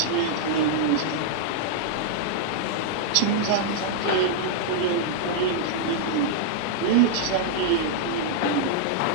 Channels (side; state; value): both; different; correlation -0.02